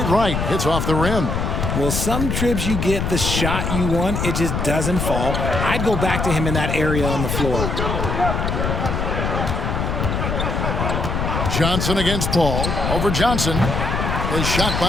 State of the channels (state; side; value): noise; left; rumble, 1 dB below the sound